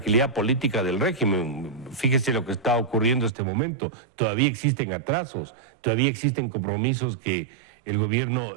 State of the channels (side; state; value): left; drops out; at 3.3 s